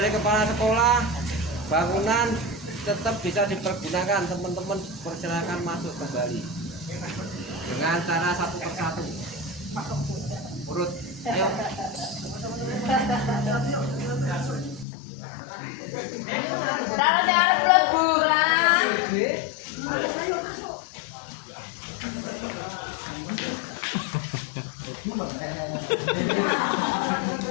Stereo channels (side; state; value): right; drops out; at 14.9 s